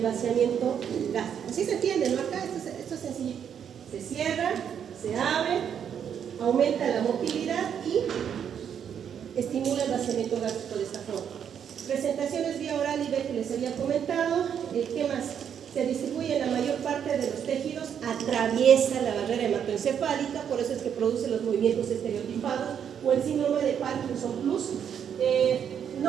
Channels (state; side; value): quieter; left; 8.3 dB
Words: gástrico. Así se entiende, ¿no? Acá esto es sencillo. Se cierra, se abre, aumenta la motilidad y estimula el vaciamiento gástrico de esta forma. Presentaciones vía oral y B que les había comentado. ¿Qué más? Se distribuye en la mayor parte de los tejidos, atraviesa la barrera hematoencefálica, por eso es que produce los movimientos estereotipados o el síndrome de Parkinson Plus.